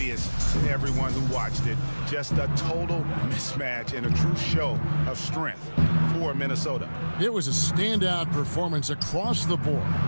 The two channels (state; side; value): inverted; both; correlation -1.00